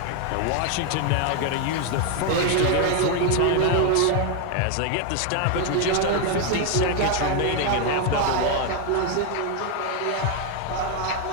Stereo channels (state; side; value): different; both; correlation 0.01